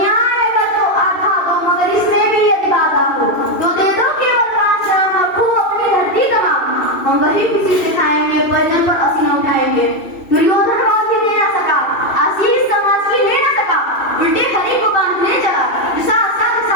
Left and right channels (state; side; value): late; right; 2.7 ms